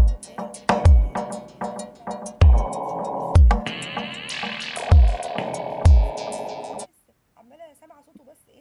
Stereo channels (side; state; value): both; identical; correlation 1.00